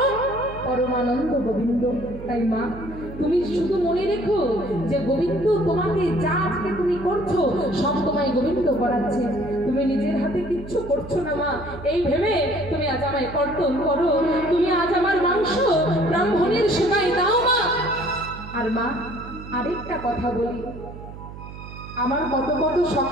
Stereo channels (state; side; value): noise; right; hum, 13 dB below the sound